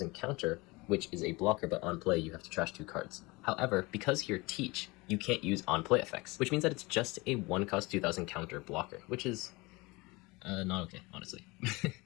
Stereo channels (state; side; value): quieter; right; 23.9 dB